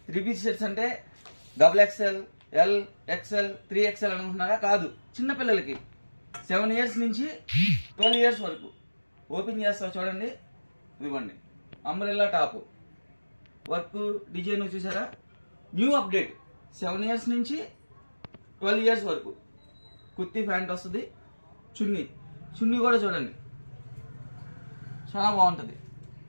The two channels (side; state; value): both; inverted; correlation -1.00